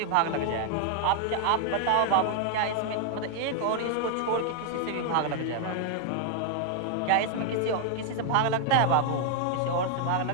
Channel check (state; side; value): different; both; correlation 0.00